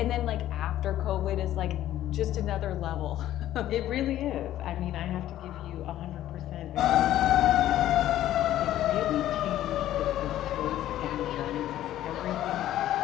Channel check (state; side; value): quieter; right; 13.0 dB